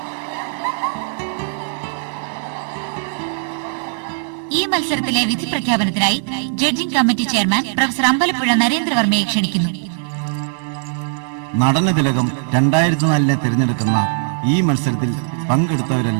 ഈ മത്സരത്തിലെ വിധി പ്രഖ്യാപനത്തിനായി judging committee chairman professor Ambalappuzha നരേന്ദ്രവർമ്മയെ ക്ഷണിക്കുന്നു. നടന തിലകം 2004 തിരഞ്ഞെടുക്കുന്ന ഈ മത്സരത്തിൽ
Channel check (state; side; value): silent; left; digital silence